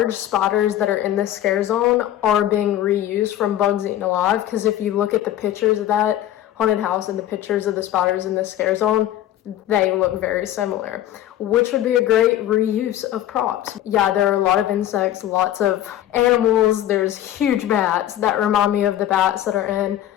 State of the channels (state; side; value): quieter; right; 12.4 dB